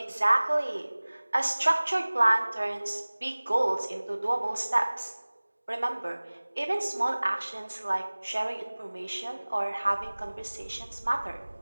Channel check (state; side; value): inverted; both; correlation -1.00